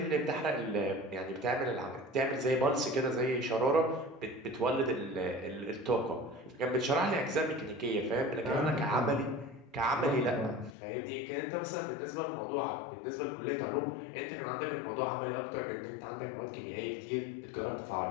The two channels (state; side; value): drops out; right; at 10.8 s